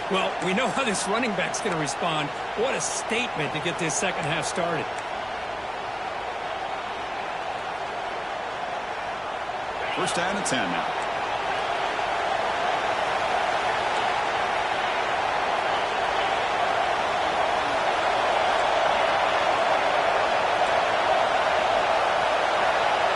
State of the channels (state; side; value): identical; both; correlation 1.00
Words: Well, we know how this running back's going to respond. What a statement to get this second half started. First down and 10 now.